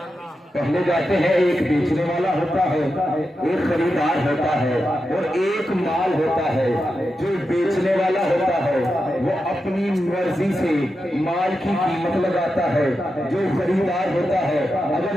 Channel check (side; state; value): both; normal; correlation 0.89